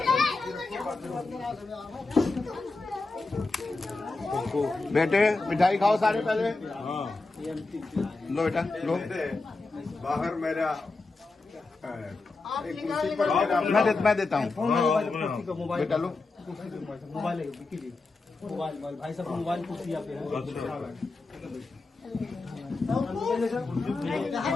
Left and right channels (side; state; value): right; quieter; 3.6 dB